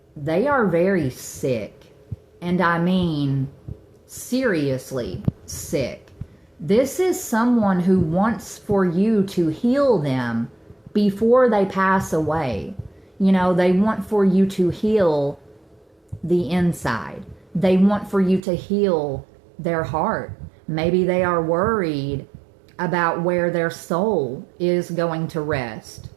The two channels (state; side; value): drops out; left; at 18.4 s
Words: they are very sick. And I mean seriously sick. This is someone who wants for you to heal them before they pass away. You know, they want for you to heal the inside. They want for you to heal their heart. Maybe they are worried about where their soul is going to rest